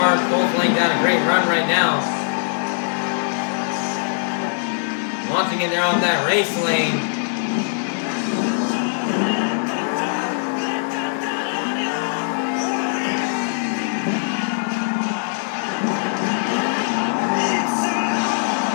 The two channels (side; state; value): right; silent; 63 dB below the other